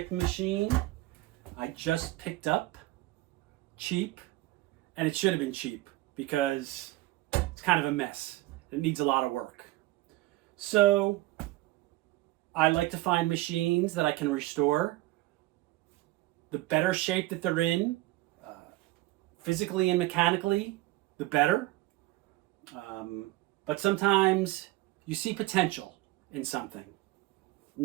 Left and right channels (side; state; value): left; quieter; 18.1 dB